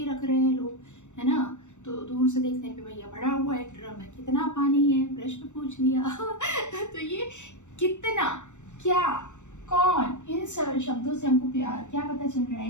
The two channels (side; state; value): right; late; 0.84 ms